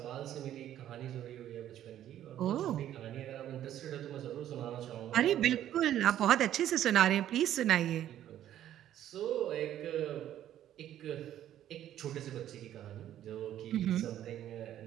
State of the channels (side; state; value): left; quieter; 11.7 dB